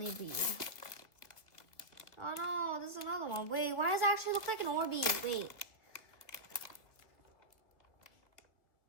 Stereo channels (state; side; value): late; right; 1.9 ms